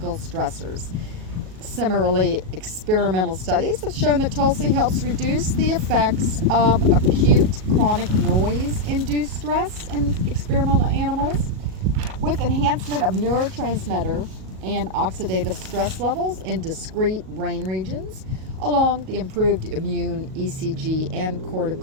stressors. Similarly, experimental studies have shown that Tulsi helps reduce the effects of acute chronic noise-induced stress in experimental animals, with enhancement of neurotransmitter and oxidative stress levels in discrete brain regions, along the improved immune, ECG, and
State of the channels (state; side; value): late; left; 37 ms